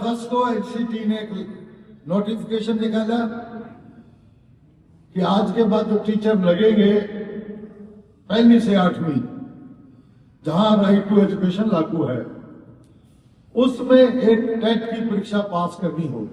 को एनसीटी ने एक नोटिफिकेशन निकाला कि आज के बाद जो टीचर लगेंगे 1 से 8वीं, जहां राइट टू एजुकेशन लागू है, उसमें एक टेट की परीक्षा पास करनी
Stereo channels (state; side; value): identical; both; correlation 1.00